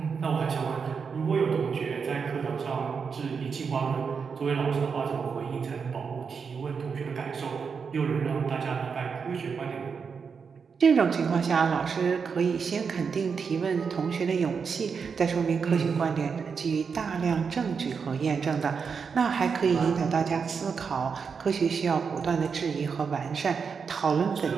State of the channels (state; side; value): quieter; left; 5.9 dB